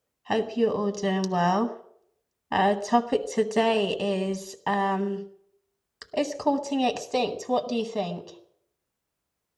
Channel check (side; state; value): both; identical; correlation 1.00